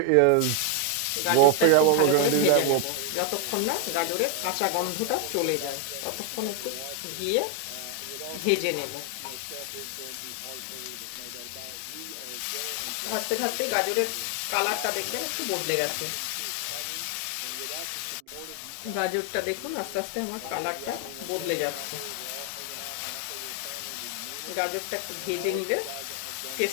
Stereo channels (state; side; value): different; both; correlation 0.01